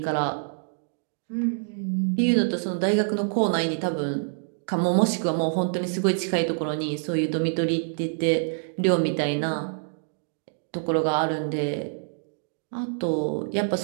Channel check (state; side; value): silent; left; digital silence